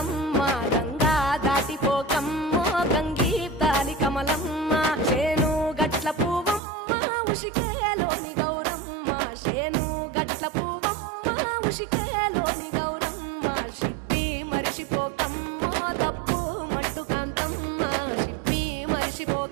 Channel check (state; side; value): drops out; left; at 6.6 s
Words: గంగా దాటిపోకమ్మో గంగీ తాలి కమలమ్మ శేను గట్ల పువ్వమ్మ ఉషికేలోని గౌరమ్మ శేను గట్ల పువ్వమ్మ ఉషికేలోని గౌరమ్మ షిప్పి మరిషిపోకమ్మో తప్పు మంటు కాంతమ్మ షిప్పి